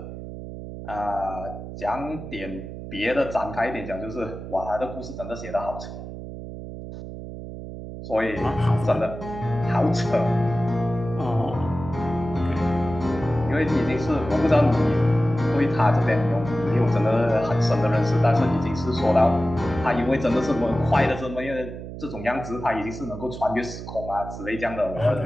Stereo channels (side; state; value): right; noise; hum, 10 dB below the sound